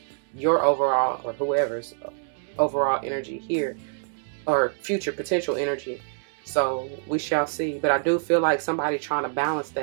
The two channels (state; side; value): silent; left; 61 dB below the other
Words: your overall, or whoever's overall energy here, or future potential energy. So we shall see. But I do feel like somebody trying to balance